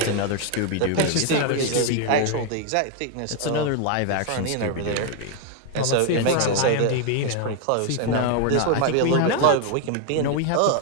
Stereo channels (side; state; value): both; different; correlation 0.01